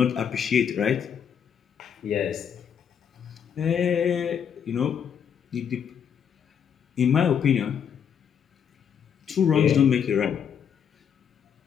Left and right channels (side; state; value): right; quieter; 7.9 dB